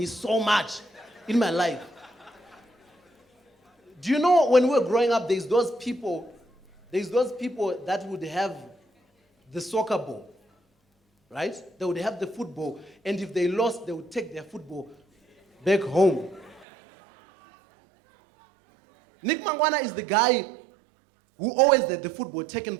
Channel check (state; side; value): drops out; left; at 16.7 s